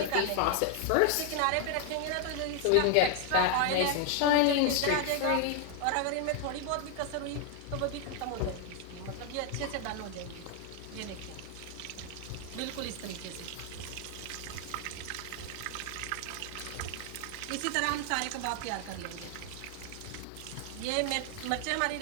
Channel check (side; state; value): both; different; correlation 0.00